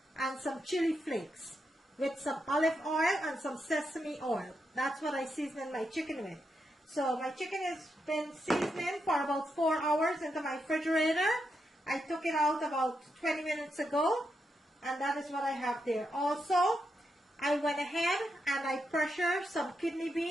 and some chili flakes with some olive oil and some sesame oil. That's what I season my chicken with. So my chicken has been seasoning for about 4 hours into my refrigerator. I took it out about 20 minutes ago, and that is what I have there. Also, I went ahead and I pressured some kidney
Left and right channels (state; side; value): normal; both; correlation 0.84